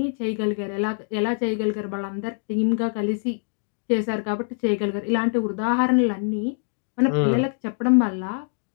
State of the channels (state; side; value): silent; right; digital silence